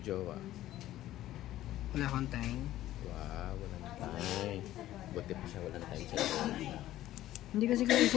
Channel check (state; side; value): quieter; right; 14.2 dB